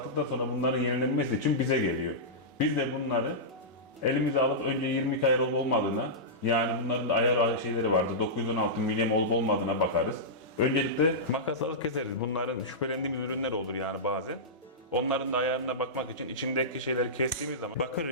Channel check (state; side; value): normal; both; correlation -0.14